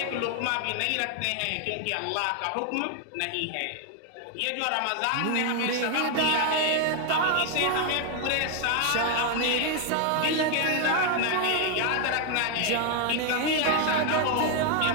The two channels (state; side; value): different; both; correlation 0.00